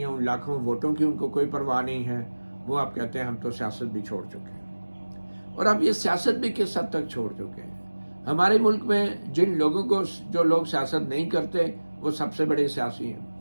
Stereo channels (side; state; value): both; inverted; correlation -1.00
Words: ان لاکھوں ووٹوں کی ان کو کوئی پرواہ نہیں ہے۔ وہ اب کہتے ہیں ہم تو سیاست بھی چھوڑ چکے ہیں۔ اور اب یہ سیاست بھی کس حد تک چھوڑ چکے ہیں؟ ہمارے ملک میں جو لوگ سیاست نہیں کرتے وہ سب سے بڑے سیاسی ہیں۔